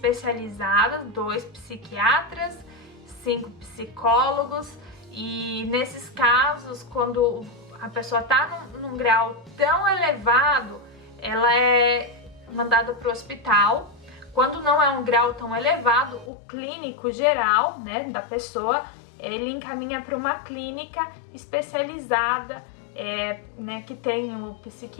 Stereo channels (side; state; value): right; drops out; at 16.3 s